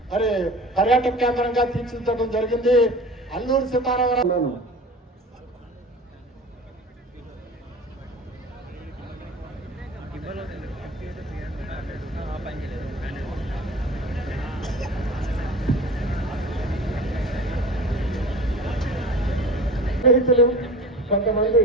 మరి పర్యాటక కేంద్రంగా తీర్చిదిద్దడం జరిగింది. అల్లూరు సీతారామరాజు స్నేహితులు కొంతమంది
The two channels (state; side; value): normal; both; correlation 0.38